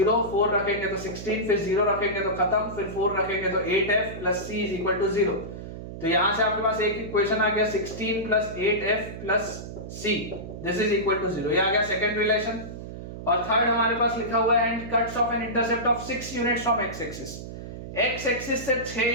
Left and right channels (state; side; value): noise; right; hum, 10 dB below the sound